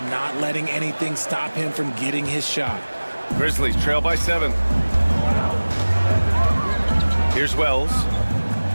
not letting anything stop him from getting his shot. Grizzlies trail by 7. Here's Wells.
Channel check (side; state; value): both; inverted; correlation -1.00